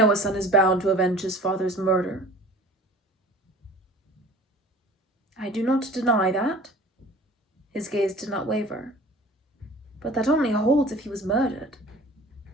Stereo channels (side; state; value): both; normal; correlation 0.45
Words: a son is bound to avenge his father's murder. I do not deny that. His gaze did not waver. But that only holds if he was murdered.